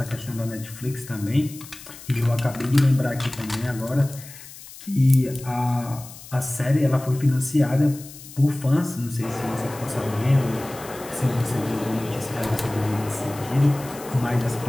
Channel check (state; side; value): noise; left; hiss, 16 dB below the sound